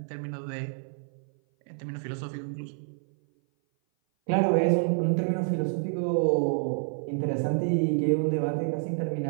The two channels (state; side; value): silent; left; 57 dB below the other